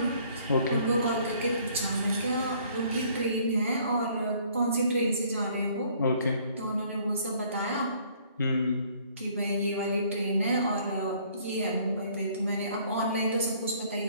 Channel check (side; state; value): both; inverted; correlation -0.59